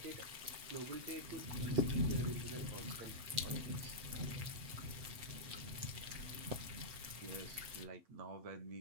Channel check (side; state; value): left; late; 8.1 ms